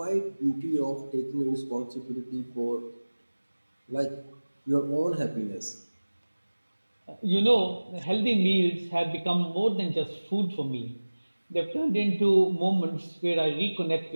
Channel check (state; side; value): inverted; both; correlation -1.00